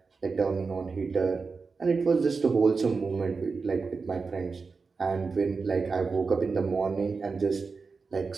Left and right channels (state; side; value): quieter; left; 4.6 dB